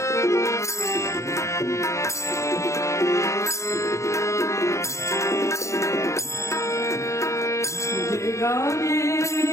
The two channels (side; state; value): right; late; 0.14 ms